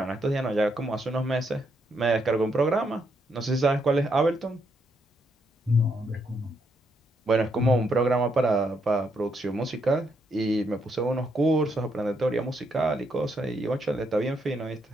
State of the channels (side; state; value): both; normal; correlation 0.77